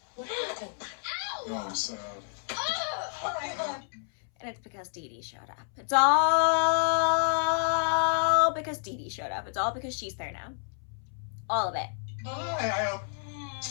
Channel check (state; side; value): silent; right; 58 dB below the other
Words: What happened? Ow! Oh, I'm sad. And it's because DeeDee showed up. It's all because DeeDee showed up. It's all because she's there now. All of it.